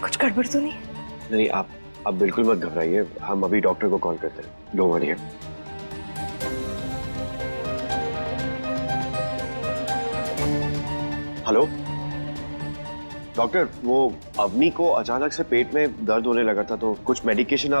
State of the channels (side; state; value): both; inverted; correlation -1.00